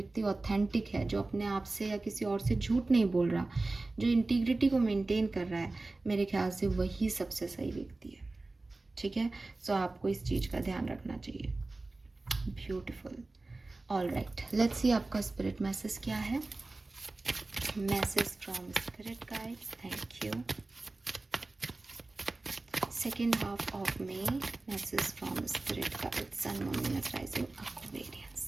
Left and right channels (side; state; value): left; quieter; 3.2 dB